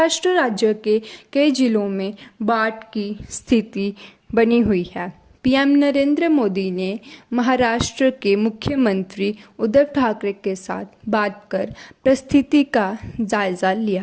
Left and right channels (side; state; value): both; identical; correlation 1.00